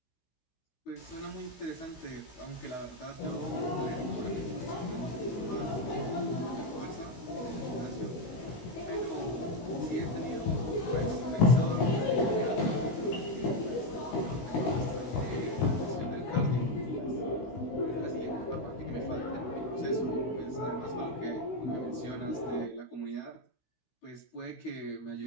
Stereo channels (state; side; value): late; right; 16 ms